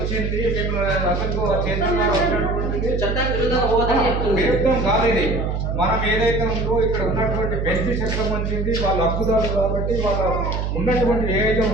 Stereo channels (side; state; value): right; noise; hum, 1 dB below the sound